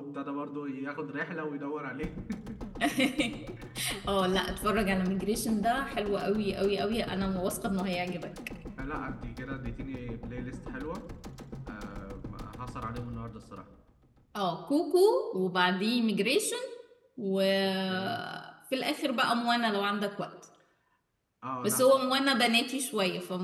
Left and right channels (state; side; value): identical; both; correlation 1.00